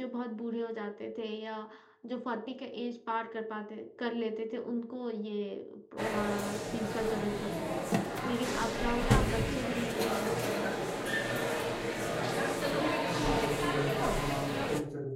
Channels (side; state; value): both; identical; correlation 1.00